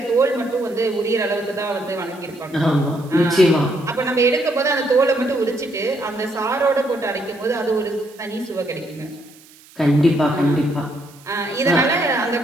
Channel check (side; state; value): right; noise; hiss, 25 dB below the sound